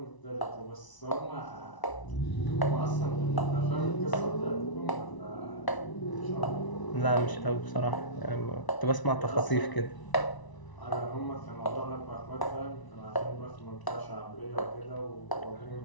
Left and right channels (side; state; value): right; late; 1.0 ms